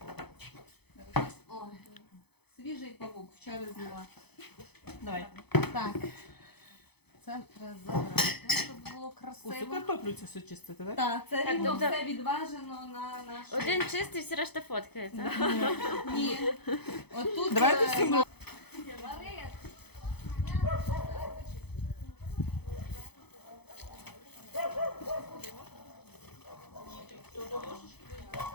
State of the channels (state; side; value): late; right; 0.98 ms